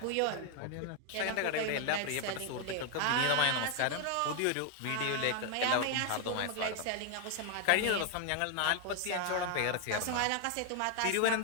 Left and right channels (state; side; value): different; both; correlation 0.01